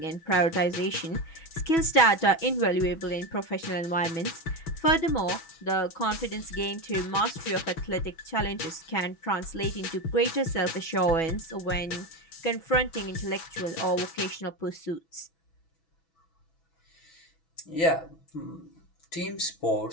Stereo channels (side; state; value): right; late; 6.1 ms